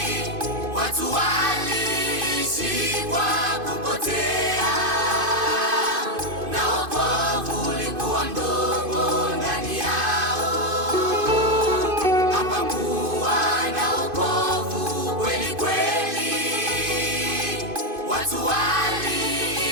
Watu waliishi kwa kupotea, na wokovu ulikuwa mdogo ndani yao. Hapakuwa na wokovu kweli kweli. Watu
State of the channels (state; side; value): late; left; 2.5 ms